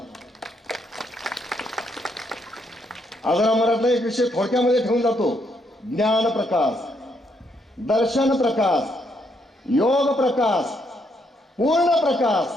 आजरा मराठा एक विषय थोडक्यामध्ये ठेवून जातो. ज्ञान प्रकाश, दर्शन प्रकाश, योग प्रकाश, पूर्ण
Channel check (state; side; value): normal; both; correlation 0.74